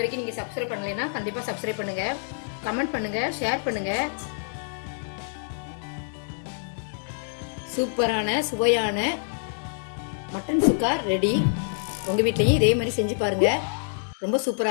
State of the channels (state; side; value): silent; right; digital silence